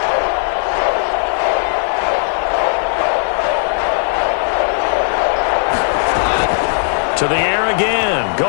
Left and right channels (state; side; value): silent; right; 66 dB below the other